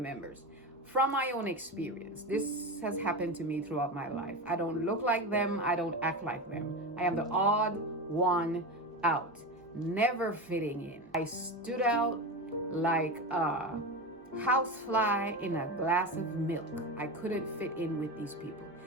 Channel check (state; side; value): normal; both; correlation 0.22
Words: From my own experience, this has happened to me throughout my life. I don't look like them, I don't act like them. I am the odd one out, never fitting in. I stood out like a housefly in a glass of milk. I couldn't fit in with these people.